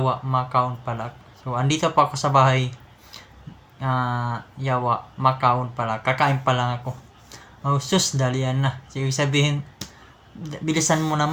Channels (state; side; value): identical; both; correlation 1.00